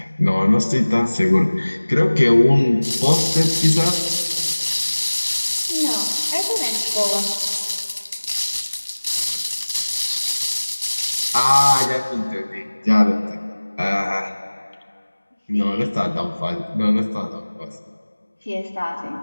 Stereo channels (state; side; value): inverted; both; correlation -1.00